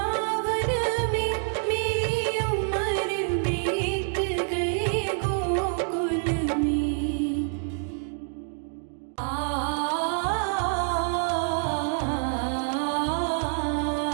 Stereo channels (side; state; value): left; silent; 60 dB below the other